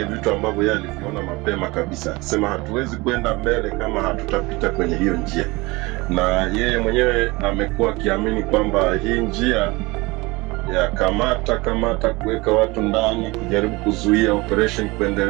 vitu ambavyo yeye aliviona mapema kabisa. Sema hatuwezi kwenda mbele kama hatutapita kwenye hiyo njia, na yeye mwenyewe amekuwa akiamini kwamba hii njia ya kamata kuweka watu ndani, kujaribu kuzuia operation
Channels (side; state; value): left; quieter; 23.2 dB